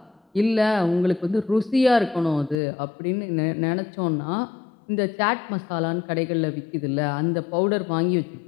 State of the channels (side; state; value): right; drops out; at 2.6 s